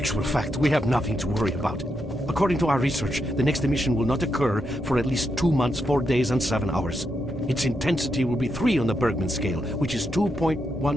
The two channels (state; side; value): normal; both; correlation 0.83